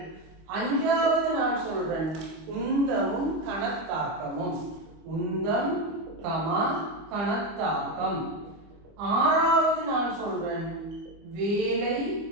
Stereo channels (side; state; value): left; late; 25 ms